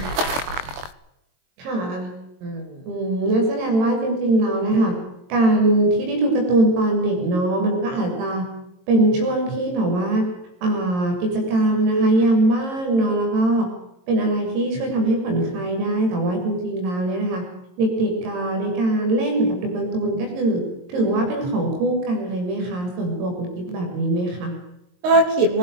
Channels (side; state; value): left; late; 22 ms